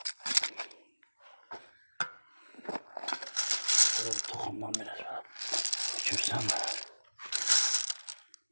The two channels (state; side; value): inverted; both; correlation -1.00